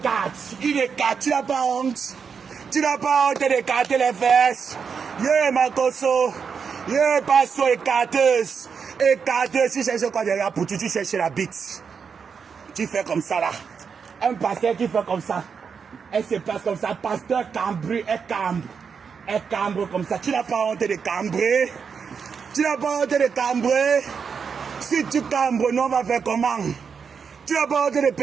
Il écarte. Tu n'as pas honte. Tu n'as pas honte d'écarter les fesses. Yeah, Makoso. Yeah, passo écarteuse. Écarteuse. Tu cherches quoi derrière pour tu cherches la bite. Tu fais comme ça là. Un pasteur qui fait comme ça. Elle se place comme ça. Pasteur cambré, elle cambre. Elle cambre comme ça. Tu n'as pas honte de cambrer. Tu n'as pas honte de cambrer. Si tu cambres, nous on va faire comment? Tu n'as pas honte de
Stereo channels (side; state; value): left; quieter; 6.2 dB